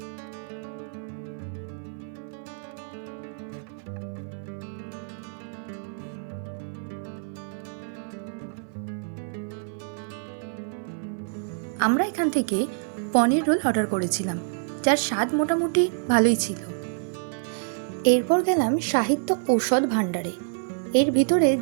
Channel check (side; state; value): left; silent; 55 dB below the other